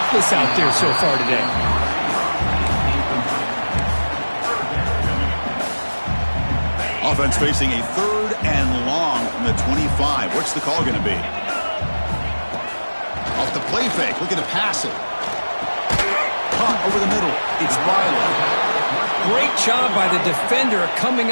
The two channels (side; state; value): both; inverted; correlation -1.00